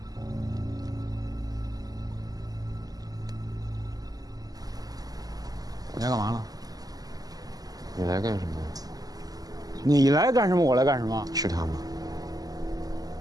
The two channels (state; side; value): late; left; 0.18 ms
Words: 来干嘛了？你来干什么？你来干什么？我来干什么？是他吗？